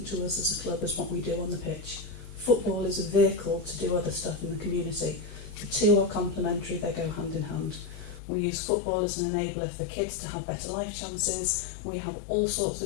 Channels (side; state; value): right; drops out; at 8.2 s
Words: to us as a club as what we do on the pitch. Football is a vehicle to do other stuff in the community. The two are complementary, they go hand in hand. We use football as an enabler for kids to have better life chances. We have all sorts